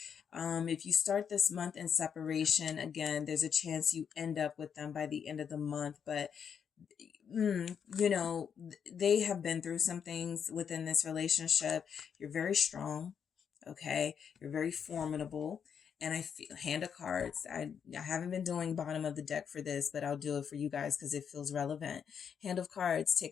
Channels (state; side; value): quieter; right; 7.4 dB